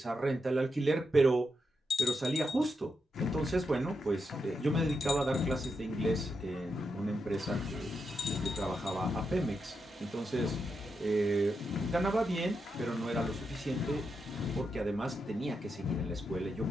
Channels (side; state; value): both; normal; correlation 0.84